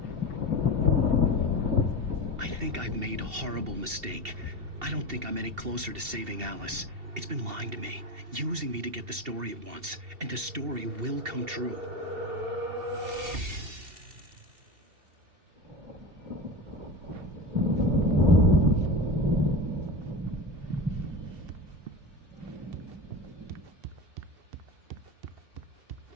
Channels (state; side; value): late; left; 2.7 ms